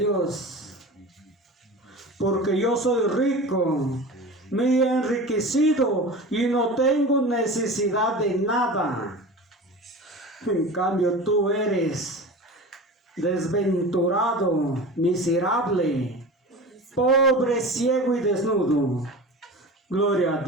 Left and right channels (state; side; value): normal; both; correlation 0.33